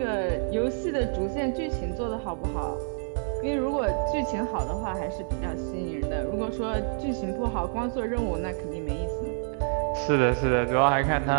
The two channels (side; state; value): left; silent; 60 dB below the other